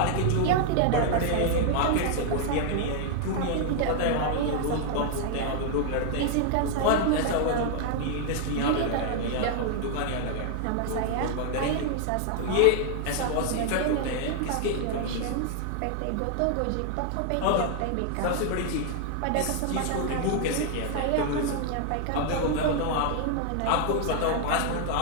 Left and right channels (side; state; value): both; different; correlation 0.00